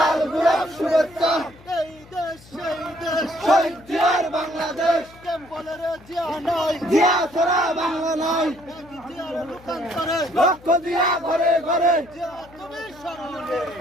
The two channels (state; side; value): noise; left; hum, 24 dB below the sound